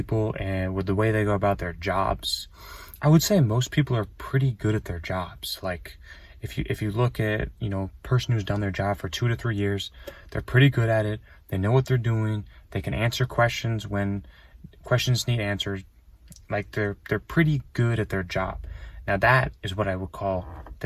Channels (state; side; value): identical; both; correlation 1.00